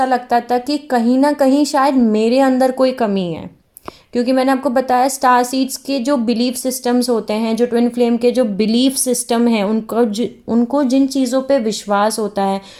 लगता था कि कहीं ना कहीं शायद मेरे अंदर कोई कमी है, क्योंकि मैंने आपको बताया स्टार सीड्स के जो बिलीफ सिस्टम्स होते हैं, जो ट्विन फ्लेम के जो बिलीफ सिस्टम है, उनको जिन चीज़ों पे विश्वास होता है,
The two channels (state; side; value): identical; both; correlation 1.00